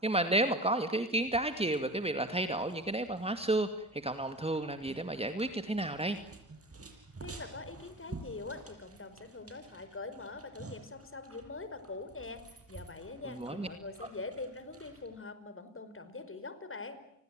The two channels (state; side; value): normal; both; correlation 0.31